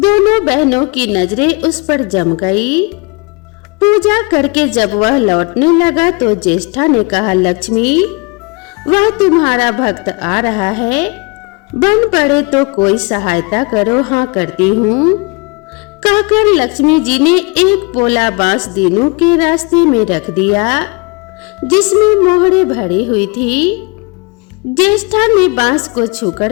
बहनों की नजरें उस पर जम गई। पूजा करके जब वह लौटने लगा तो ज्येष्ठा ने कहा, लक्ष्मी, वह तुम्हारा भक्त आ रहा है, बन पड़े तो कोई सहायता करो। हाँ, करती हूँ, कहकर लक्ष्मी जी ने एक पोला बांस दीनू के रास्ते में रख दिया जिसमें मोहरे भरी हुई थी। ज्येष्ठा ने बांस को छूकर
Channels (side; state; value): right; quieter; 29.6 dB